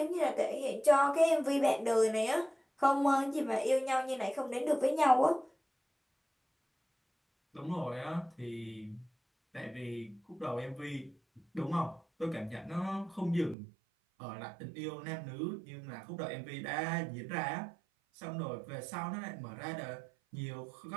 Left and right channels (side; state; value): left; drops out; at 13.6 s